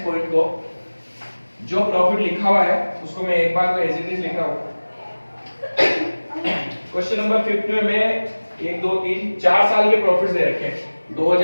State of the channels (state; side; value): inverted; both; correlation -1.00